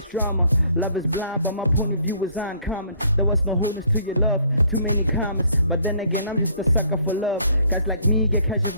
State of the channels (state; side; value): inverted; both; correlation -0.60